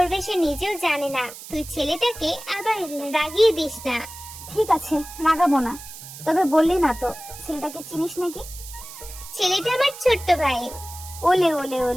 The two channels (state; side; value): noise; right; hiss, 14 dB below the sound